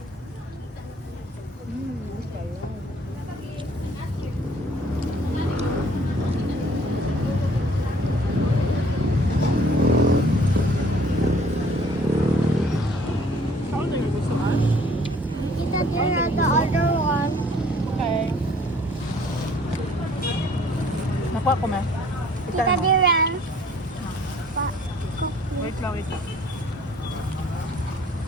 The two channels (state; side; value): normal; both; correlation 0.56